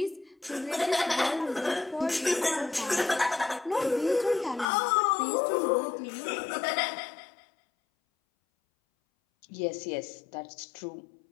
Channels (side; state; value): right; drops out; at 4.7 s